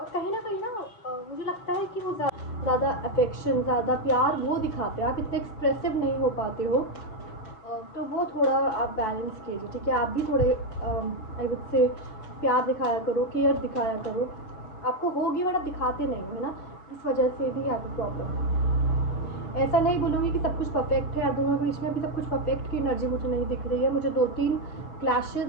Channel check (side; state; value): right; late; 6.2 ms